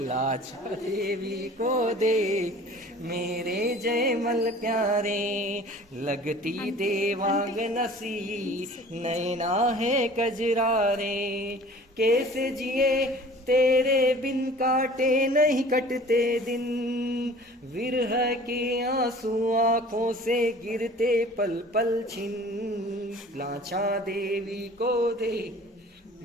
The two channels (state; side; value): normal; both; correlation 0.46